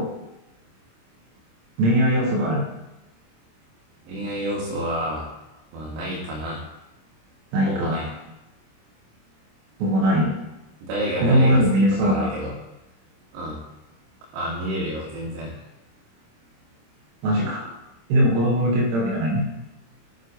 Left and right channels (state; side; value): late; left; 26 ms